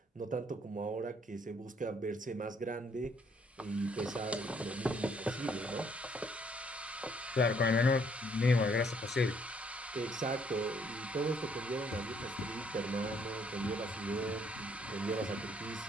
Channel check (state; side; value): normal; both; correlation 0.66